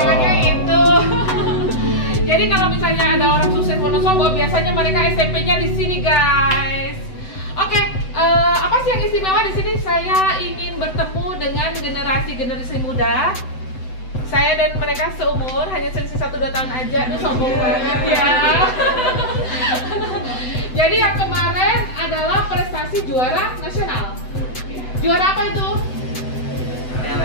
itu. Jadi kalau misalnya ada orang sukses Wonosobo, biasanya mereka SMP-nya di sini, guys. Oke, apa sih yang istimewa di sini? Saya ingin bertemu dengan generasi muda. Saya dan mereka seumur, hanya selisih 1-2 tahun aja. Aduh, sombong banget ya. Jadi yang kemarin adalah prestasi juara nasional. Juara apa itu?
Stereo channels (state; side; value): late; right; 7.9 ms